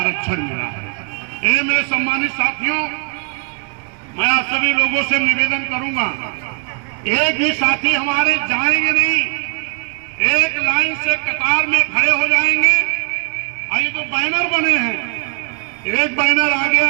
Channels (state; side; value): quieter; left; 39.4 dB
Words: मिला है। ये मेरे सम्मानित साथियों, मैं आप सभी लोगों से निवेदन करूंगा, एक भी साथी हमारे जाएंगे नहीं, एक लाइन से कतार में खड़े हो जाएंगे। ये तो बैनर बने हैं, एक बैनर